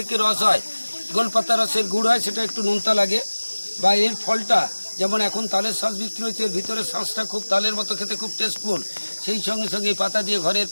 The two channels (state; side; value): inverted; both; correlation -1.00